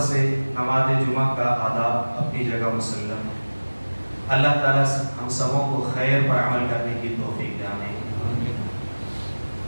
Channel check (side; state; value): both; inverted; correlation -1.00